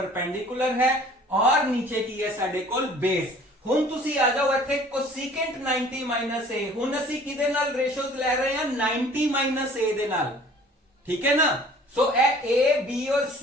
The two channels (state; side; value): normal; both; correlation 0.51